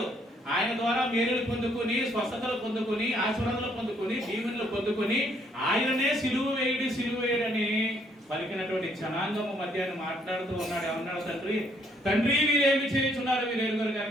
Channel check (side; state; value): both; normal; correlation 0.68